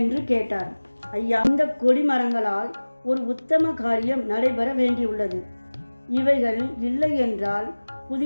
கேட்டார். ஐயா, இந்த கொடிமரங்களால் ஒரு உத்தம காரியம் நடைபெற வேண்டியுள்ளது. இவைகள் இல்லை என்றால்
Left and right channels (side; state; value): both; inverted; correlation -1.00